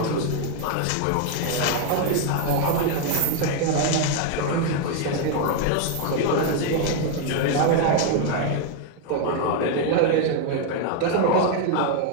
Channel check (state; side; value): different; both; correlation 0.01